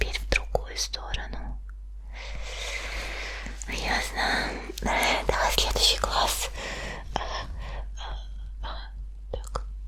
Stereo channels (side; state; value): both; identical; correlation 1.00